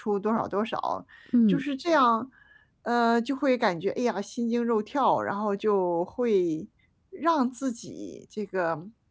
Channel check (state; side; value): identical; both; correlation 1.00